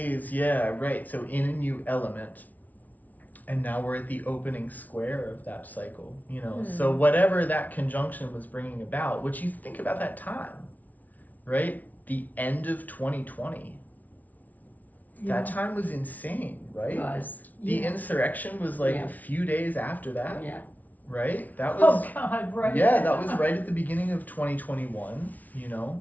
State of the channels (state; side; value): late; right; 0.076 ms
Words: yeah, right. So in a new element. And now we're at the opening square of that cycle, you know. So whatever that conjunction was bringing about, which you think about that time, right? The end of 2020. Yeah. That time was insane, right? It was. The insurrection was like Yeah. a few days after that, Yeah. right? That was Oh God, right. yeah, that was right at the beginning of 2021, you know.